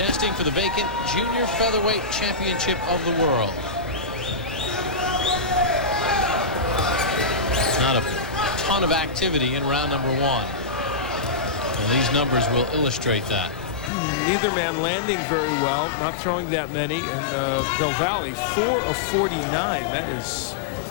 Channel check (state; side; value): drops out; right; at 13.9 s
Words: for the vacant Junior Featherweight Championship of the world. Not a ton of activity in round number 1. And these numbers will illustrate that. Neither man landing very well, not throwing that many, and Del Valle 4 of 49. That is